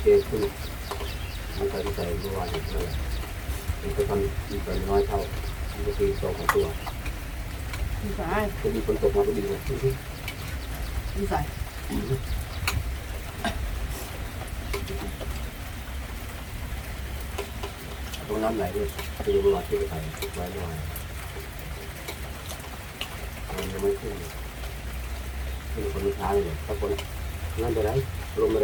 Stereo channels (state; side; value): identical; both; correlation 1.00